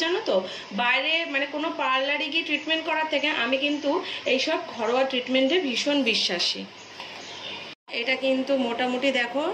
জানো তো, বাইরে মানে কোনো পার্লারে গিয়ে ট্রিটমেন্ট করার থেকে আমি কিন্তু এইসব ঘরোয়া ট্রিটমেন্টে ভীষণ বিশ্বাসী। এটা কিন্তু মোটামুটি দেখো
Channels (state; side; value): identical; both; correlation 1.00